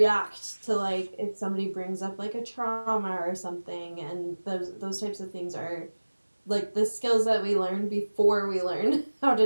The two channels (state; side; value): inverted; both; correlation -1.00